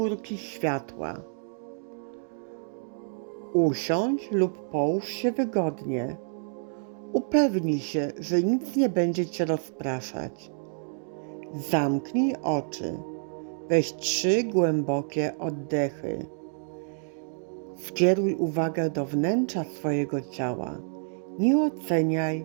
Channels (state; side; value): silent; left; digital silence